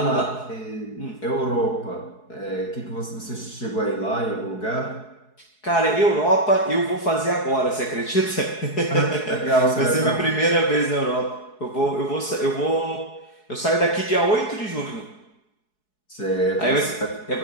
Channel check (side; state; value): right; late; 4.7 ms